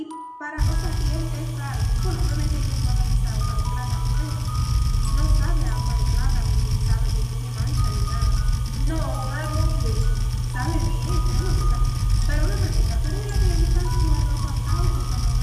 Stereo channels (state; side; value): identical; both; correlation 1.00